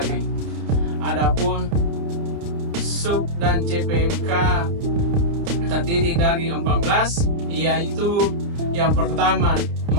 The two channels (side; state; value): left; late; 29 ms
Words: Adapun sub dan CPMK terdiri dari 14, yaitu yang pertama,